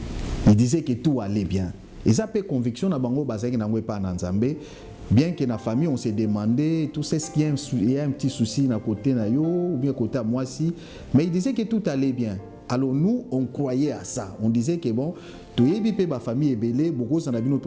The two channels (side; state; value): both; identical; correlation 1.00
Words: Ils disaient que tout allait bien. Et ça fait conviction na bango bazaki na ngwe pa na Nzambe. Bien que la famille, on s'est demandé, tout ce qu'il y a un petit souci à côté na yo, ou bien côté à moi si, mais il disait que tout allait bien. Alors nous, on croyait à ça. On disait que bon, tout est bien, ma famille est belle, beaucoup s'en a bien